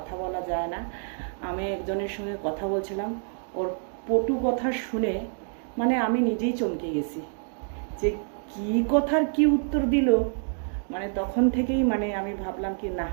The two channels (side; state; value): left; silent; digital silence